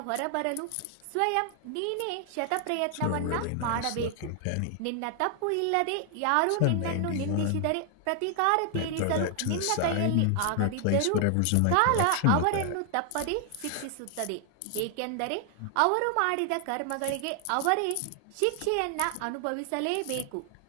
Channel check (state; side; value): different; both; correlation 0.00